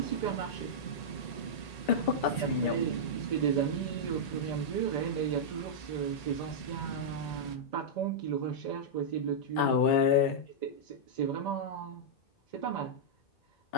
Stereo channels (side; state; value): right; late; 1.8 ms